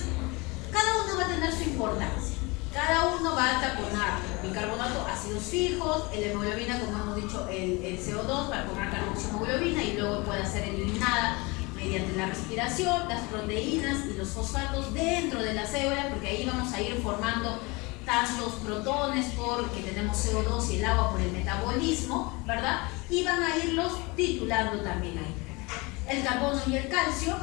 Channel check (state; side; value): quieter; right; 25.9 dB